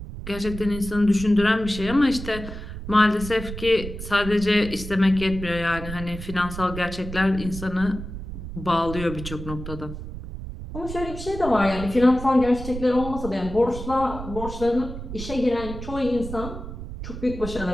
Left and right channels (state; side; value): noise; right; rumble, 9 dB below the sound